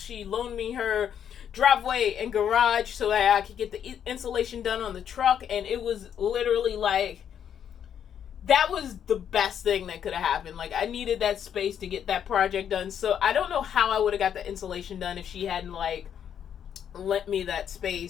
she loaned me her driveway and garage so that I could get the insulation done on the truck, and it was literally like, that was the best thing that could have happened. Like, I needed that space to get that project done, so I don't know how I would have got the insulation done if she hadn't like lent me that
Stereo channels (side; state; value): right; quieter; 8.9 dB